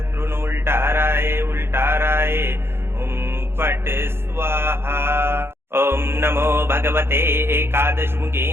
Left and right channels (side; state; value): left; late; 0.11 ms